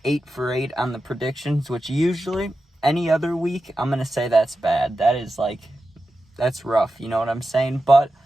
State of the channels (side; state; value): both; normal; correlation 0.91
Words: 8 for 8 on the predictions, which usually any other week, I'm going to say that's bad. That's rough. You know what I'm saying? But